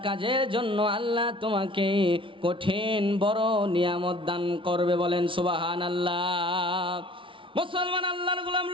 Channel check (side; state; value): left; late; 0.25 ms